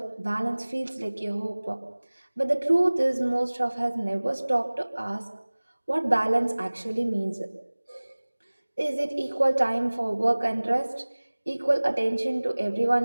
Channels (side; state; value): both; inverted; correlation -1.00